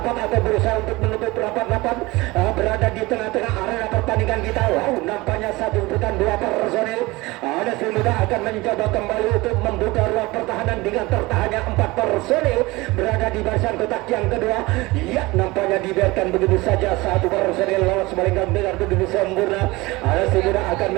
atau berusaha untuk menutup rapat-rapat berada di tengah-tengah arena pertandingan kita. Nampaknya 1 bukan 2 personil Ada si muda akan mencoba kembali untuk membuka ruang pertahanan dengan tertahannya 4 personil berada di barisan kotak yang kedua. Ya, nampaknya dibiarkan begitu saja satu personil lolos melenggang dengan begitu sempurna. Ada si muda akan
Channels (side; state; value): left; quieter; 21.7 dB